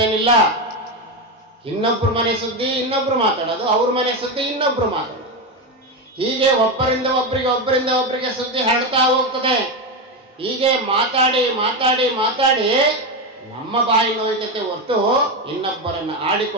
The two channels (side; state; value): both; normal; correlation 0.13